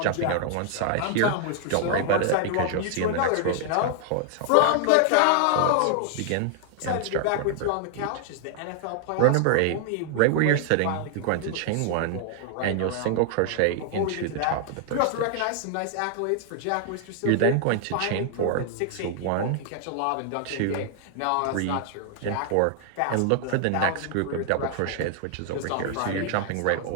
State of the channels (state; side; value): different; both; correlation 0.00